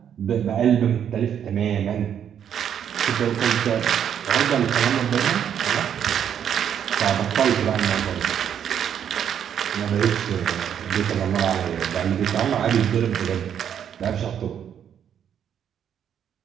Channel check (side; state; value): left; quieter; 8.9 dB